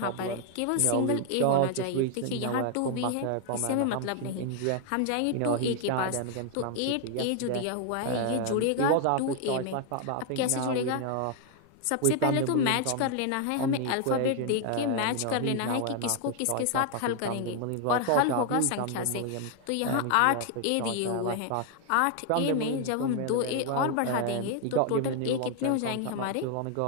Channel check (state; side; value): different; both; correlation 0.00